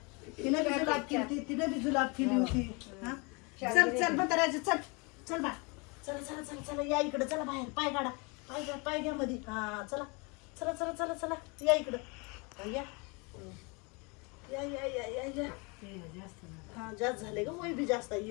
तिनं बी जुलाब केली तिनं बी जुलाब केली होती हा चल चल म्हाताऱ्याची चल चल बाय चला चला चला चला या इकडे चला बाहेर पाय काढा पाय घ्या मध्ये हा चला चला चला चला चला या इकडं या या या या या या हा जास्त झाले ग वय बी जास्त आहे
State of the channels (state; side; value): quieter; right; 30.1 dB